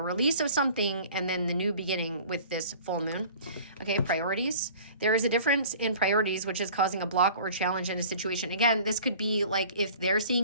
of something and then the new beginning with this full moon. Okay, priorities. There is a difference in priorities, which is causing a block or challenge in a situation. Again, this could be like if they're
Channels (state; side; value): inverted; both; correlation -0.46